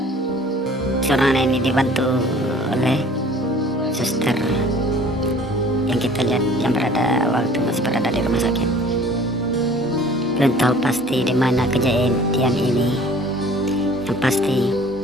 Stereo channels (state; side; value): normal; both; correlation 0.50